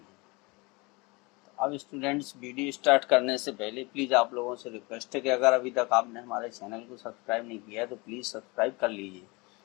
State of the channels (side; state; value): right; quieter; 26.2 dB